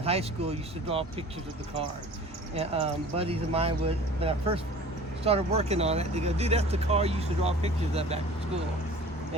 school I used to draw pictures of the car. And buddies of mine would, when I first started working on it, they go, dude, that's the car you used to draw pictures of back in school.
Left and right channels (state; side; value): normal; both; correlation 0.44